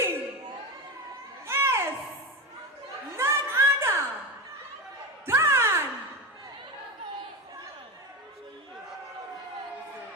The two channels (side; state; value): both; normal; correlation 0.20